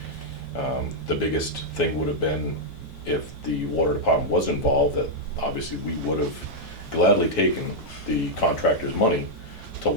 The biggest thing would have been if the water department was involved, that obviously we would have gladly taken the contractor's money to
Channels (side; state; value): both; normal; correlation -0.04